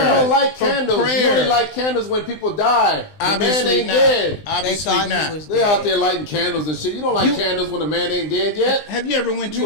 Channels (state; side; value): late; right; 20 ms